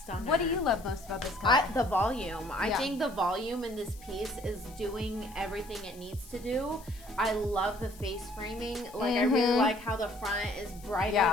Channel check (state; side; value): noise; left; hiss, 21 dB below the sound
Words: What do you love most about this color? The volume. I Yeah. think the volume in this piece is doing everything it needs to do. I love the face framing. Like I really like how the front is brighter